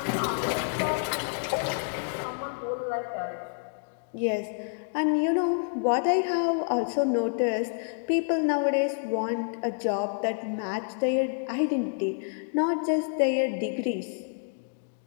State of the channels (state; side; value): silent; right; digital silence